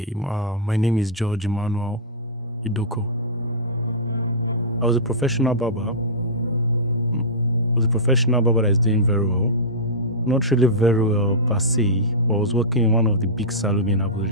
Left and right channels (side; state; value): both; normal; correlation -0.15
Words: my name is George Emmanuel Idoko. I was a professional barber. I was a professional barber that is doing very well. Not really very well per se, but I was working in one of the big salons in